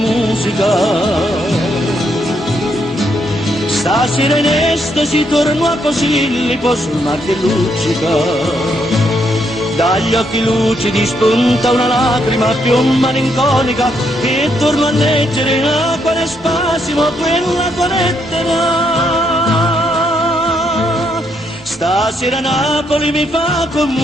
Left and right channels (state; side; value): normal; both; correlation 0.76